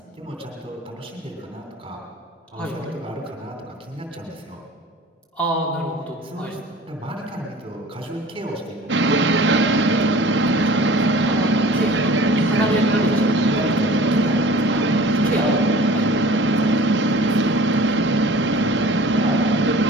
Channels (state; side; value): normal; both; correlation 0.44